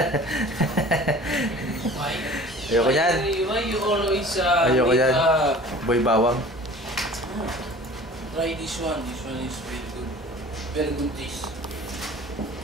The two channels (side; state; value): both; normal; correlation 0.44